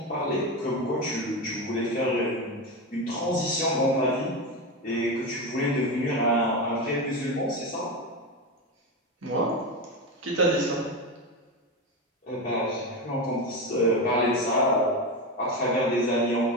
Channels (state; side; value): normal; both; correlation 0.17